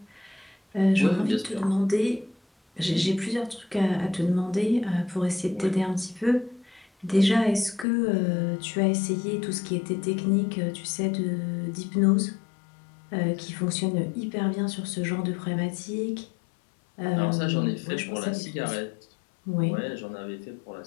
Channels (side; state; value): right; drops out; at 7.9 s